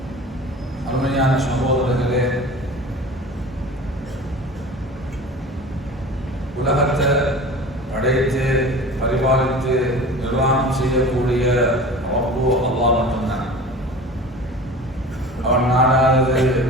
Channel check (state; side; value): normal; both; correlation 0.37